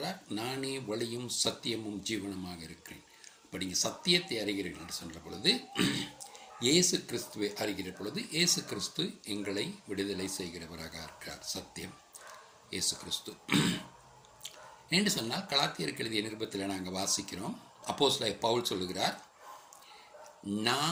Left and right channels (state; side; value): identical; both; correlation 1.00